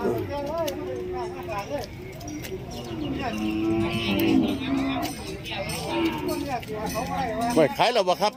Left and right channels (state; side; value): identical; both; correlation 1.00